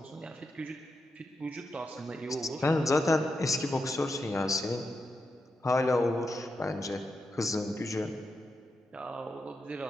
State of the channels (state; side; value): normal; both; correlation 0.86